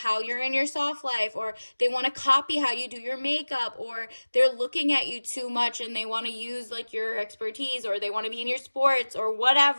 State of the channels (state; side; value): inverted; both; correlation -1.00